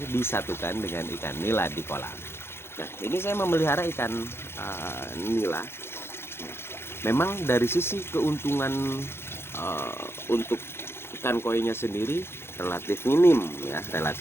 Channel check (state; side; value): late; right; 0.12 ms